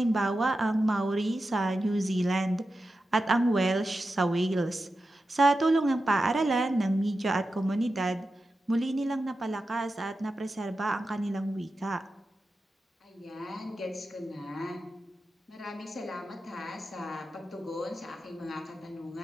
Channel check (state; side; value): normal; both; correlation 0.91